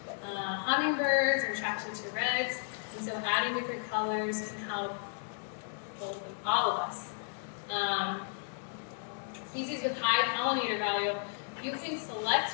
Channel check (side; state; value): right; silent; digital silence